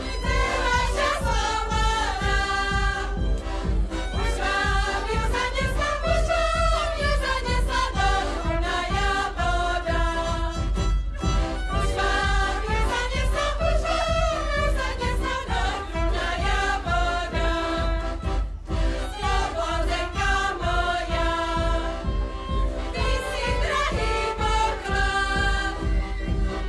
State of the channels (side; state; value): both; identical; correlation 1.00